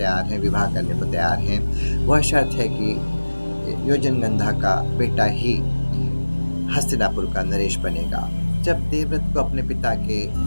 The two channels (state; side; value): inverted; both; correlation -1.00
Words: हैं, विवाह करने को तैयार हैं। वह शर्त है कि योजनगंधा का बेटा ही हस्तिनापुर का नरेश बनेगा। जब देवव्रत को अपने पिता के